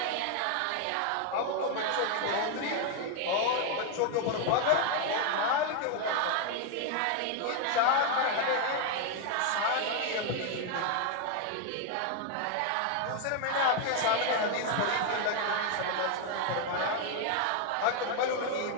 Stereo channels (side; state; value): both; different; correlation 0.01